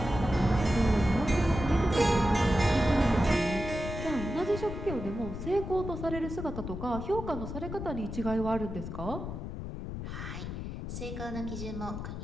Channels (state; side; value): noise; left; rumble, 7 dB below the sound